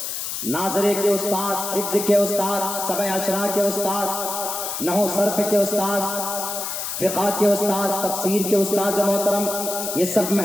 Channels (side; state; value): left; noise; hiss, 4 dB below the sound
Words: ناظرے کے استاد، حفظ کے استاد، سبع عشرہ کے استاد، نحو صرف کے استاد، فقہ کے استاد، تفسیر کے استاد محترم، یہ سب